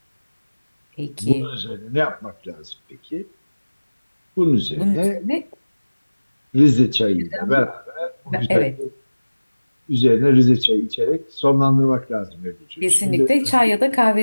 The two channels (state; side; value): inverted; both; correlation -1.00